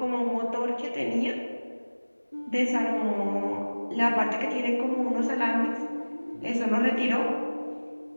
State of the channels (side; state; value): both; inverted; correlation -1.00